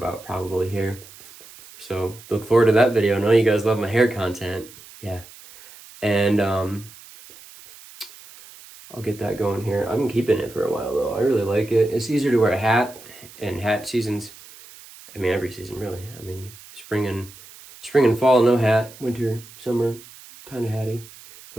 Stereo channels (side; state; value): right; noise; hiss, 20 dB below the sound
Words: probably here. So look forward to that video. I know you guys love my hair content. Yeah. And I'll get that going here. I'm keeping it for a while though. I really like it. It's easier to wear a hat, and hat seasons, every season really. Spring and fall, no hat. Winter, summer, kind of hatty.